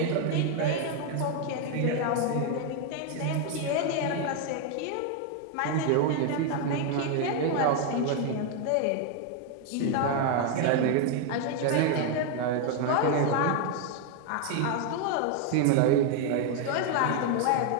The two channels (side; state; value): both; different; correlation 0.01